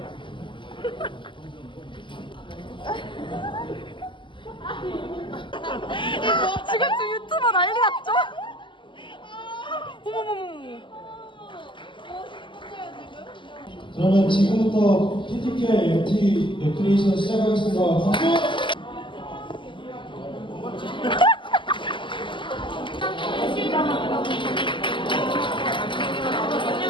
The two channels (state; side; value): late; right; 0.24 ms